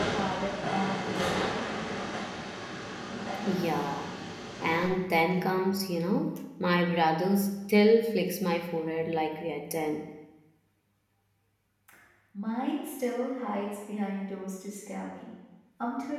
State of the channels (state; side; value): identical; both; correlation 1.00